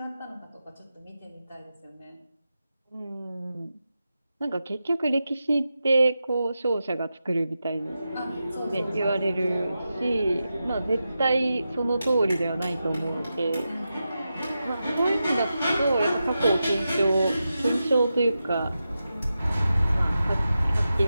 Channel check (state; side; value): inverted; both; correlation -0.90